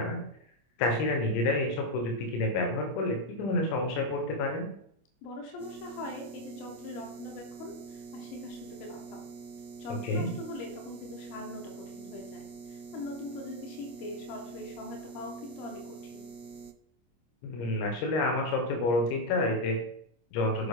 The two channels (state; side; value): late; right; 25 ms